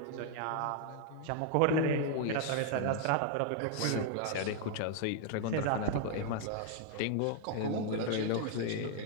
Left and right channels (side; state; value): both; different; correlation 0.00